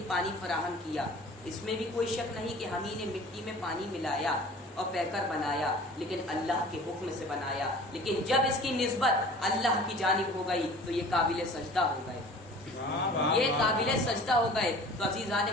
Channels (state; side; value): normal; both; correlation 0.44